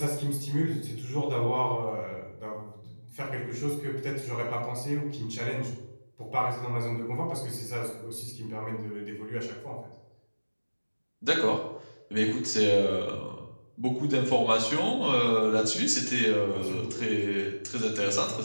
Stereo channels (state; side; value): inverted; both; correlation -1.00